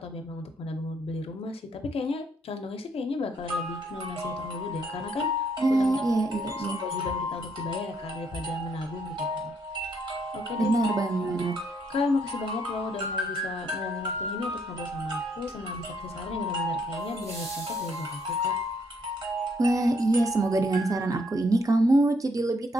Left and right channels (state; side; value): normal; both; correlation 0.70